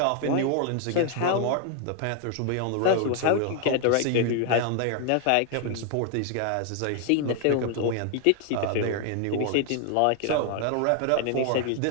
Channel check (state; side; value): different; both; correlation 0.00